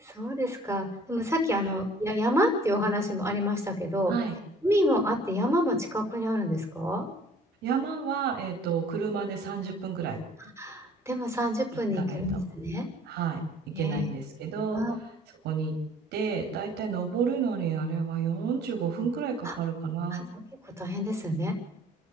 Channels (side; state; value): both; normal; correlation 0.53